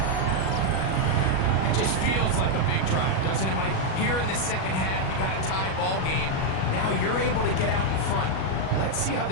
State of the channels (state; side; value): late; right; 37 ms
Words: It just feels like a big drive, doesn't it, Mike? Here in the second half, you got a tie ball game. Now you're able to get out in front. Let's see how